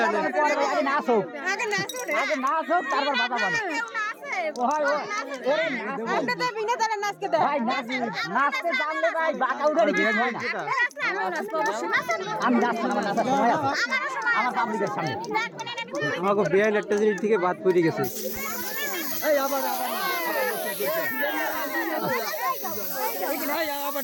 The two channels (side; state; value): both; identical; correlation 1.00